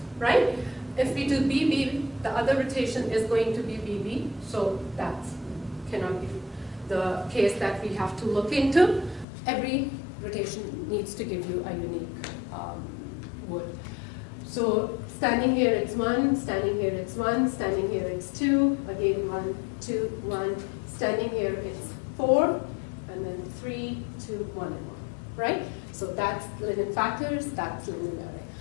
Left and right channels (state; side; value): drops out; right; at 9.2 s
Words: right? If we do BB, the other rotation is going to be BB, so that cannot be the case that we have to look into. Every rotation needs to give you a unique word. So standing here it's 1, standing here it's 1, standing here it's 2, again 1, 2, 1, standing here it's 4, and then 3, 2, 1, and 1, right? So that's Lyndon factors, that's Lyndon array.